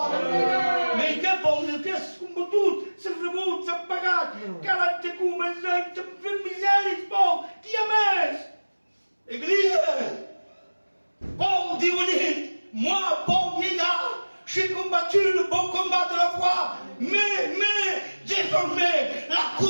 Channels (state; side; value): inverted; both; correlation -1.00